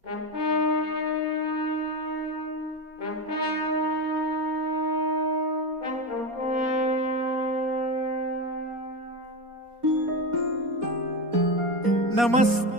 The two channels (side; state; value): left; late; 4.2 ms